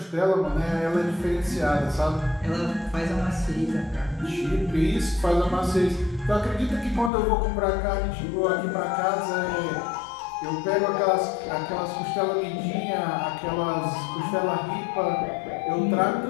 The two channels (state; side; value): drops out; right; at 7.1 s